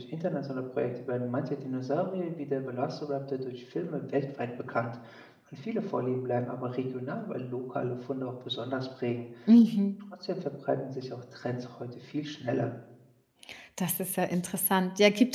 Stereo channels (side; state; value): both; identical; correlation 1.00